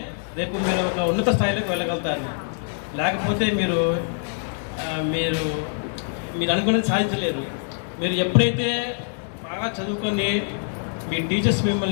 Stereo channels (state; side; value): silent; right; 62 dB below the other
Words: రేపు మీరు ఒక ఉన్నత స్థాయిలోకి వెళ్ళగలుగుతారు. లేకపోతే మీరు మీరు మీరు అనుకున్నది సాధించలేరు. మీరు ఎప్పుడైతే బాగా చదువుకొని మీ టీచర్స్